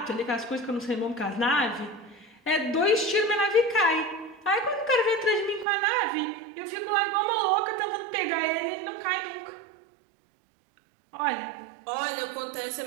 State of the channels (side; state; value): left; drops out; at 5.7 s